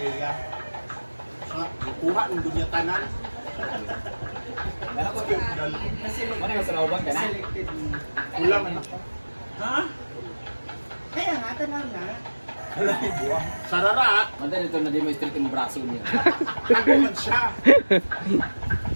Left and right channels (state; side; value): inverted; both; correlation -1.00